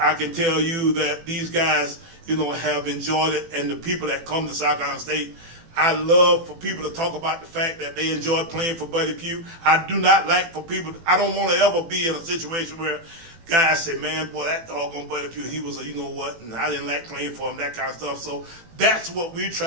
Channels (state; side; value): late; left; 18 ms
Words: I can tell you that these guys, have enjoyed it, and the people that come to South Carolina State, I love for people to talk about the fact that they enjoy playing for Buddy Pugh. I do not like for people, I don't want to ever be in a situation where guys say, man, boy, that doggone Buddy Pugh, he was a you-know-what, and I didn't like playing for him, that kind of stuff. So that's what we're